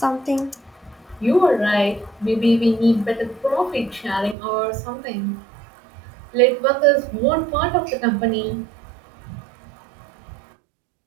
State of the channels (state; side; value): drops out; left; at 4.4 s